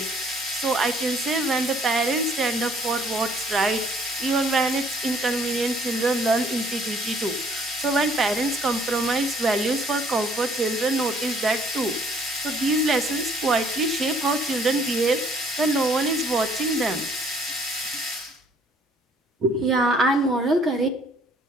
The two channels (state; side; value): normal; both; correlation 0.61